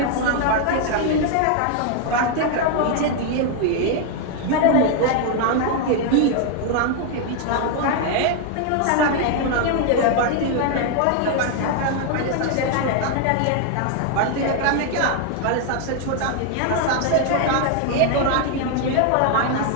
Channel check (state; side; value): different; both; correlation 0.00